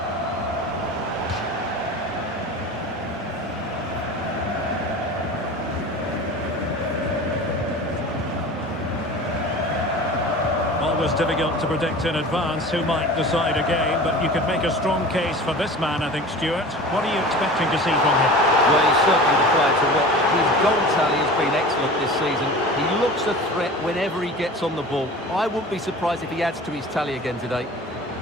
Always difficult to predict in advance who might decide a game, but you could make a strong case for this man, I think, Stuart. What are you expecting to see from him? Well, he's certainly the player to watch. His goal tally has been excellent this season. He looks a threat whenever he gets on the ball. I wouldn't be surprised if he adds to his tally again today.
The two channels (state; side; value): normal; both; correlation 0.37